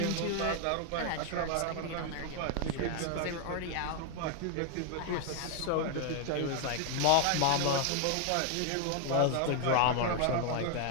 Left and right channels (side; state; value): both; different; correlation 0.00